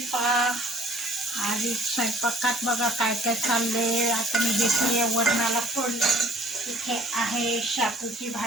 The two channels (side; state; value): both; normal; correlation 0.55